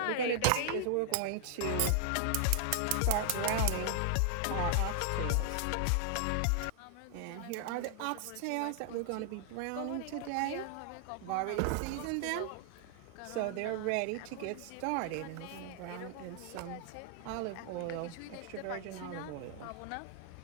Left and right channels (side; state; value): both; different; correlation 0.00